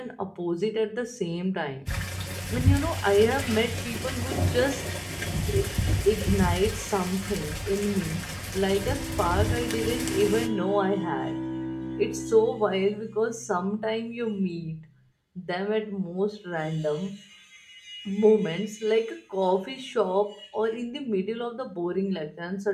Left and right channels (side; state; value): both; identical; correlation 1.00